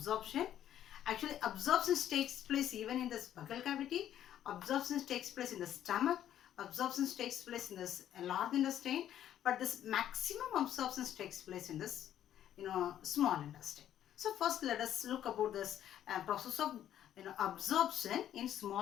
Actually, absorption takes place even in the buccal cavity. Absorption takes place in the stomach. Absorption takes place in this large intestine. But this maximum absorption takes place in this, small intestine. So first, let us look about this process of absorption in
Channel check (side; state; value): right; quieter; 11.1 dB